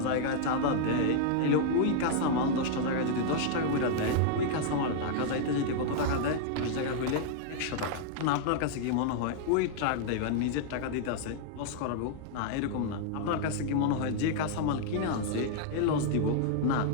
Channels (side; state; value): both; different; correlation -0.01